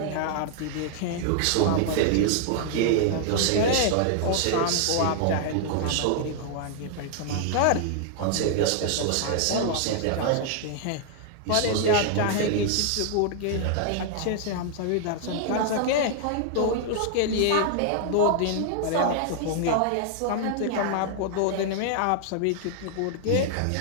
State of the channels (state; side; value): different; both; correlation 0.00